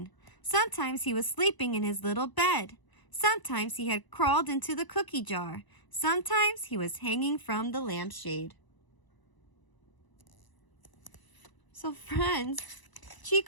Sometimes he was sleeping in his little bed. Sometimes he had crawled into the cookie jar. Sometimes he was hanging from the lampshade. So friends,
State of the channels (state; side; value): late; right; 1.0 ms